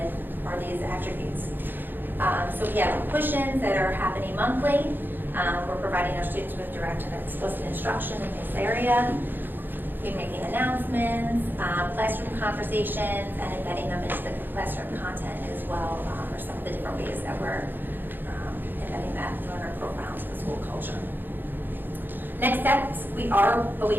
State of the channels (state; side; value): late; left; 0.094 ms